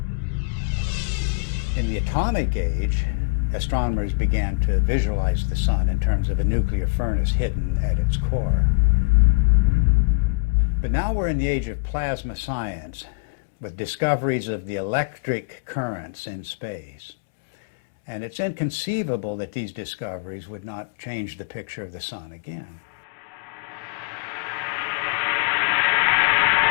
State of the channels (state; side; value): quieter; right; 34.1 dB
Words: In the atomic age, astronomers began to visualize the sun in terms of a nuclear furnace hidden at its core. But now we're in the age of plasma science, with discoveries of the electric currents in space. And it's inconceivable that these discoveries would not change the picture of the sun again.